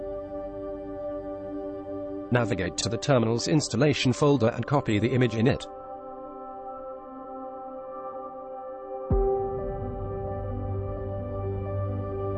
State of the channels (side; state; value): both; identical; correlation 1.00